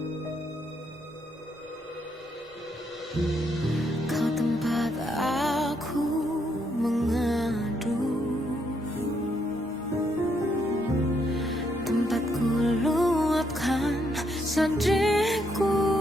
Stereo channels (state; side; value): normal; both; correlation 0.75